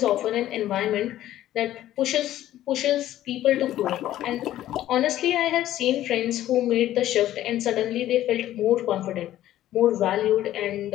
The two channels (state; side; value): quieter; right; 13.3 dB